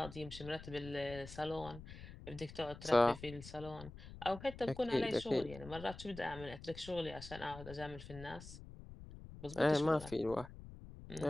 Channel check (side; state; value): left; noise; rumble, 14 dB below the sound